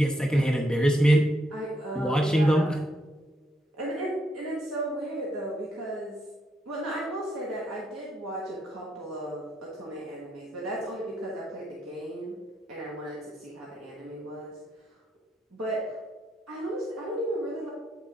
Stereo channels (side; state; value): both; normal; correlation 0.77